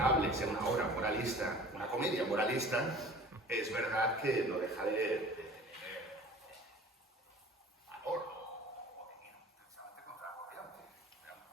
sea una obra moralista, una comedia moralista, es verdad que no deja de tener valor o de ir precisamente contra la corriente.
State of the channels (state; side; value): normal; both; correlation 0.44